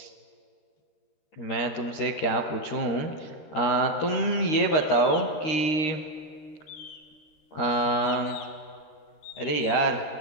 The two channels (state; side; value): late; right; 13 ms